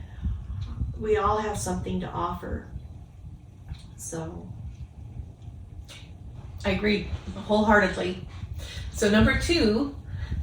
we all have something to offer. So I agree wholeheartedly. So number 2,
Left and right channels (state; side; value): identical; both; correlation 1.00